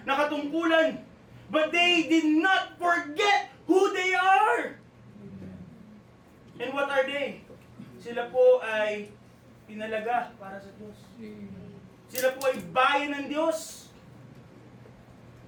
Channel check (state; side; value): identical; both; correlation 1.00